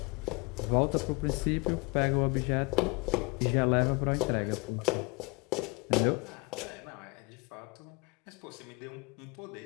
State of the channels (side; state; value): right; quieter; 27.3 dB